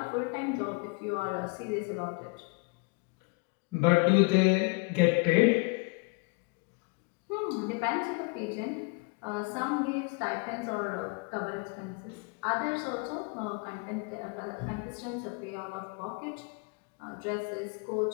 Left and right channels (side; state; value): right; quieter; 30.1 dB